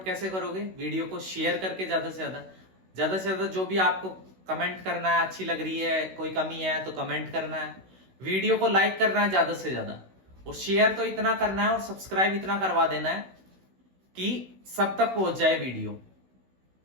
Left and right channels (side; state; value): left; late; 16 ms